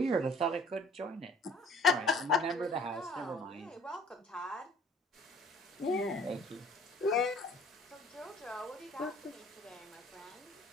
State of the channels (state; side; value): normal; both; correlation 0.53